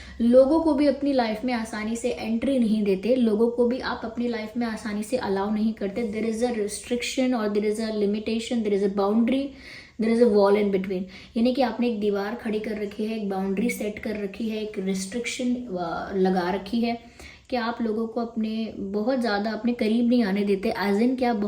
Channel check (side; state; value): both; identical; correlation 1.00